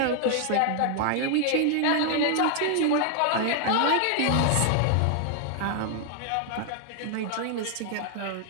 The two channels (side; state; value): both; different; correlation 0.00